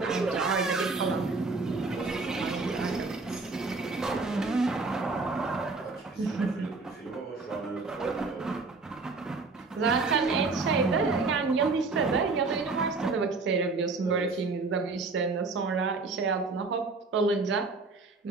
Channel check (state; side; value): quieter; left; 3.9 dB